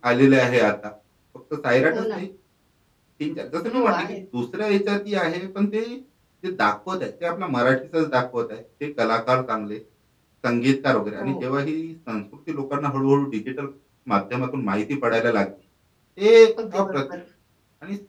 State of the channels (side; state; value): both; identical; correlation 1.00